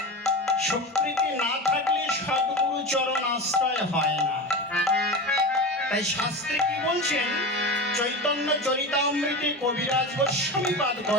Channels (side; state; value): both; normal; correlation 0.25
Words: স্বীকৃতি না থাকলে সদ্গুরু চরণ আশ্রয় হয় না। তাই শাস্ত্রে কি বলছেন, চৈতন্য চরিতামৃতে কবিরাজ গোস্বামীপাদ